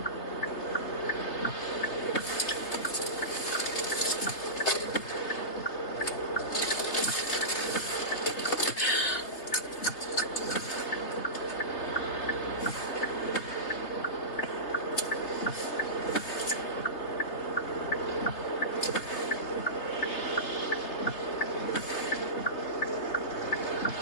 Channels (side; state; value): right; late; 3.3 ms